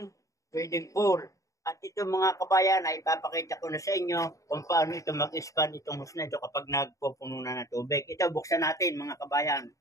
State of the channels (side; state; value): right; late; 0.16 ms